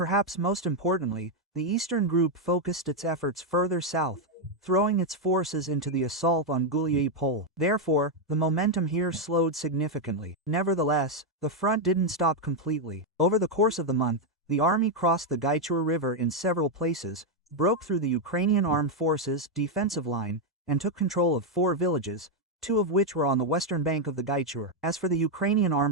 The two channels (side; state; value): both; normal; correlation 0.01